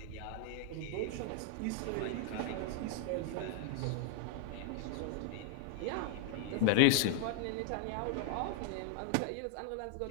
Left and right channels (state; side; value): different; both; correlation 0.00